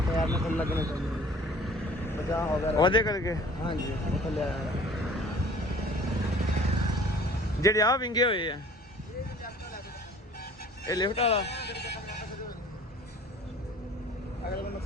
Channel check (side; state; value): both; normal; correlation 0.49